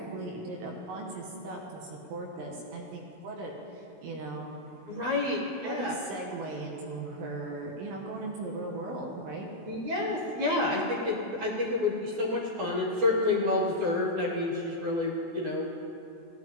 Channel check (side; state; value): left; late; 16 ms